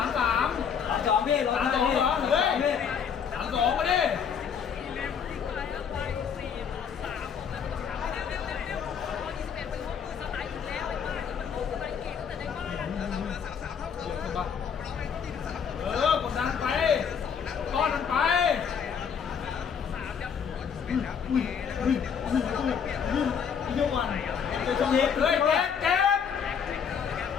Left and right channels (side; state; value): right; quieter; 7.2 dB